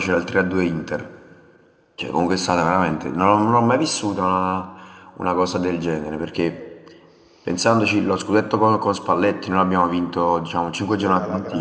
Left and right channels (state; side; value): identical; both; correlation 1.00